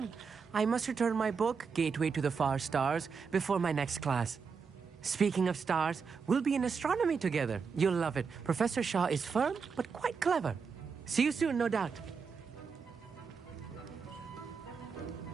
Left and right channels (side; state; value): left; quieter; 5.6 dB